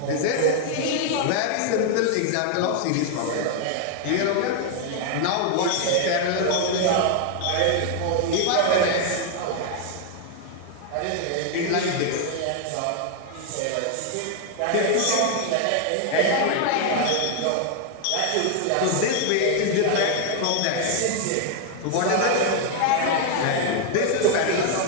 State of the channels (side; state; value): both; different; correlation 0.00